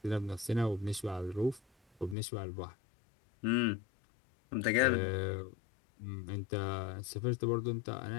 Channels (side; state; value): right; drops out; at 2.1 s